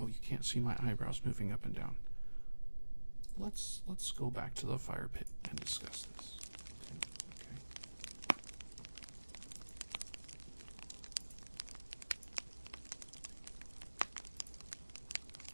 you can't see my eyebrows moving up and down. Let's go back to the fire pit and discuss this. Okay.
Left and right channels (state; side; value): inverted; both; correlation -1.00